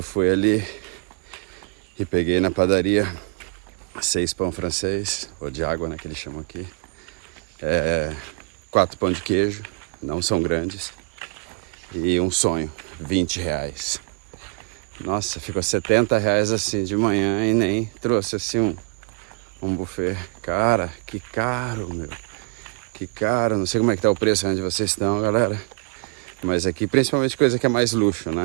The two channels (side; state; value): left; quieter; 32.1 dB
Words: ali e peguei na padaria 6 pão francês, ou de água, né, que eles chamam aqui. 4 pão de queijo, não são grandes. E um sonho, R$20. Nossa, ficou R$70 assim de manhã e nem trouxe assim um buffet. Cara, que caro, meu. Que caro, não sei como é que tá o preço onde vocês estão, galera. Mas aqui, principalmente coisa que é mais luxo,